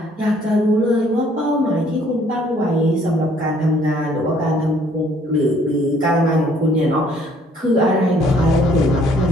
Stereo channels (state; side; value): normal; both; correlation 0.62